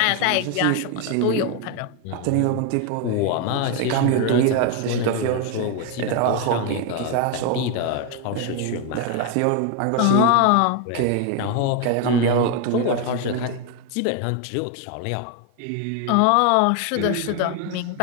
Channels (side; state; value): both; different; correlation 0.01